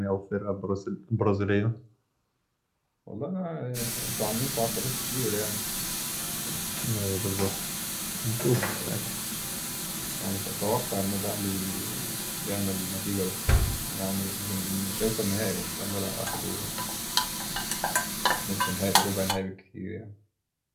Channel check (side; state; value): both; identical; correlation 1.00